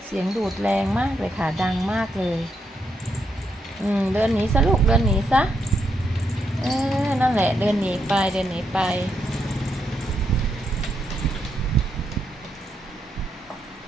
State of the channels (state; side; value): normal; both; correlation 0.80